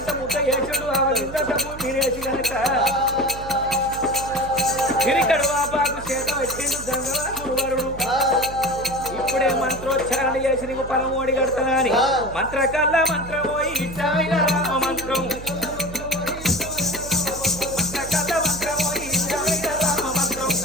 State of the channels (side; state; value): right; noise; hum, 13 dB below the sound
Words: ఇప్పుడే మంత్రోచ్చారణ చేసి నీకు పరమోడి కడతానా అని మంత్రకల్ల మంత్రమో ఇచ్చాయిన రామ మంత్రం మంత్రకల్ల మంత్రమో ఇచ్చాయిన రామ మంత్రం